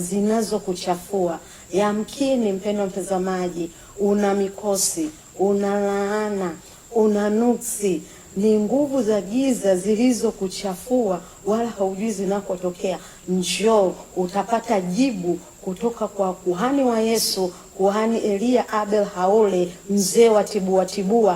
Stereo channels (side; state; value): both; identical; correlation 1.00